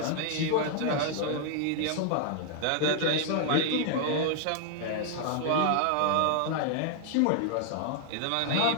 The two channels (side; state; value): both; different; correlation 0.00